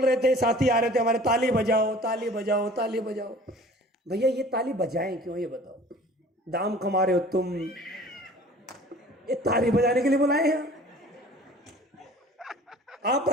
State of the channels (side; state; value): both; normal; correlation 0.47